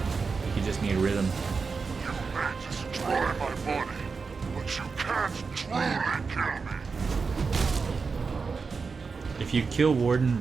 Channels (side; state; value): left; quieter; 4.9 dB